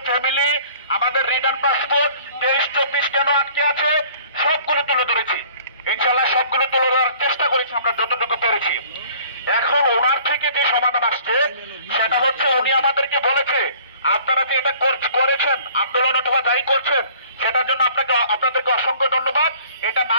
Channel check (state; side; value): inverted; both; correlation -0.52